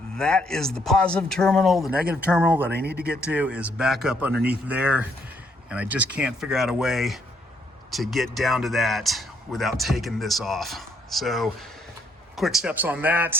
That is the positive terminal. The negative terminal that I need to get to is back up underneath there, and I just can't figure out a way to get down to that without taking this off. So quick steps on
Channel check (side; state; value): both; normal; correlation 0.71